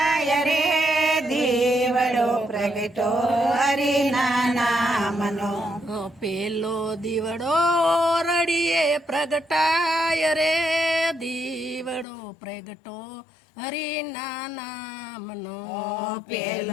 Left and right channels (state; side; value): drops out; right; at 12.1 s